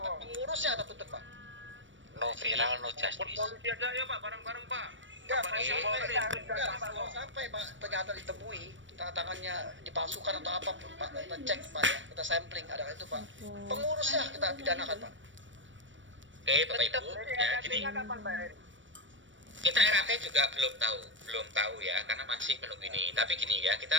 pengurusnya kita tutup, Pak. No viral, no justice. Polisi aja ya Pak, bareng-bareng Pak. Enggak, kalau sampai Pak ternyata ditemui tangannya dipalsukan atau apapun, Pak, kita cek, Pak, ya, kita sampling ada itu, Pak. Pengurusnya kita pidanakan, Pak. Oke, Bapak Ibu, ya gini. Kita RAT juga belum tahu ya, karena masih menunggu ini. Tapi gini ya,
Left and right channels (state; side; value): late; left; 0.56 ms